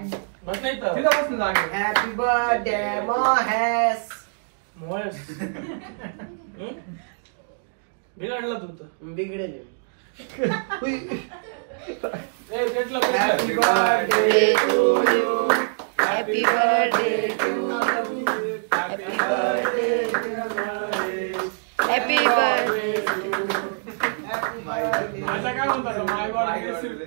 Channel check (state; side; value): silent; left; digital silence